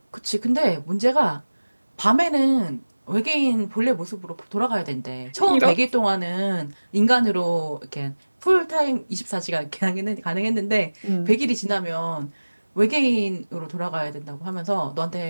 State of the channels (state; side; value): inverted; both; correlation -1.00